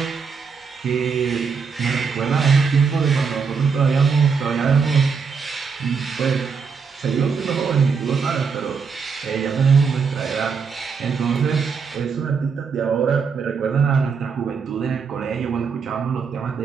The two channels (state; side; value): quieter; left; 5.7 dB